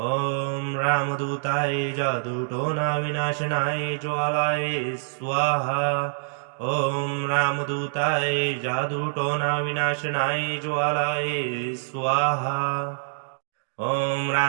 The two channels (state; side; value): silent; left; digital silence